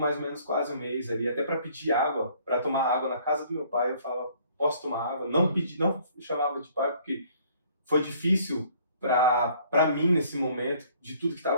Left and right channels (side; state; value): both; inverted; correlation -0.59